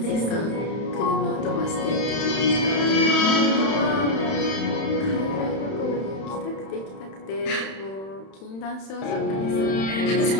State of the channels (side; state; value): right; late; 31 ms